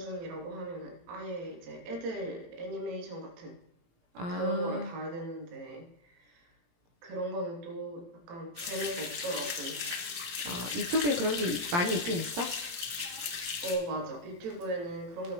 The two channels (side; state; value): left; late; 17 ms